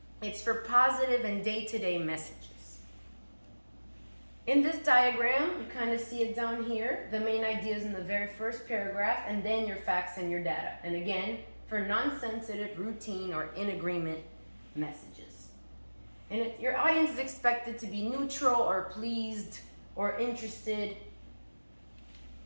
It's for positive and day-to-day messages. In this diagram, you kind of see it down here. The main idea is in the very first paragraph, and then your facts and your data. And again, for non-sensitive, routine, or in agreement messages. And your audience is expected to be neutral or pleased or interested.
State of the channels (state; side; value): inverted; both; correlation -1.00